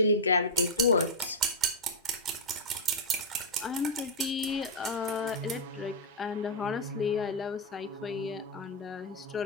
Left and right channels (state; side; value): normal; both; correlation -0.03